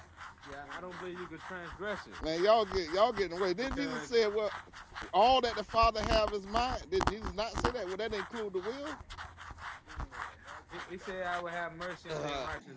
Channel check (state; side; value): identical; both; correlation 1.00